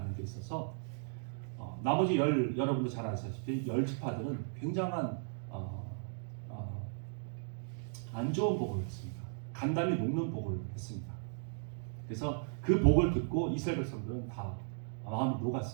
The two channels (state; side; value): silent; left; digital silence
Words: 데 있어서 나머지 여러분도 잘 아시다시피 10지파들은 굉장한 안 좋은 복을 했습니다. 간담이 녹는 복을 했습니다. 그래서 그 복을 듣고 이스라엘 백성들은 다 마음이